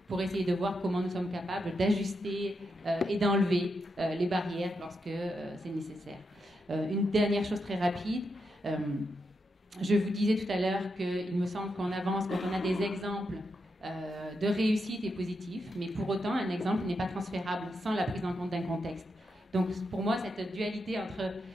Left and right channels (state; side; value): normal; both; correlation 0.84